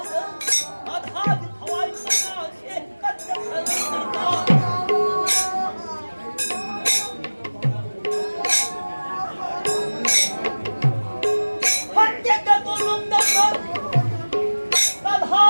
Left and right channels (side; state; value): both; inverted; correlation -1.00